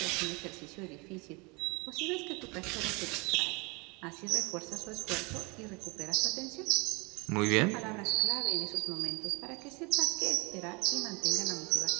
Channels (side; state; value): left; quieter; 28.5 dB